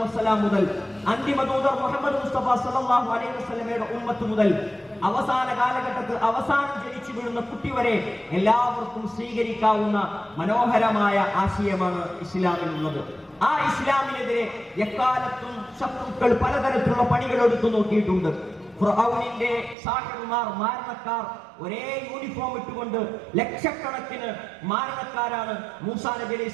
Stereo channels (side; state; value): left; drops out; at 19.8 s